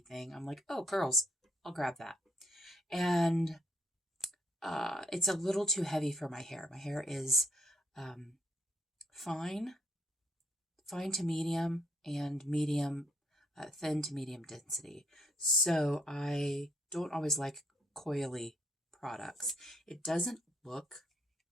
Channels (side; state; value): both; normal; correlation 0.70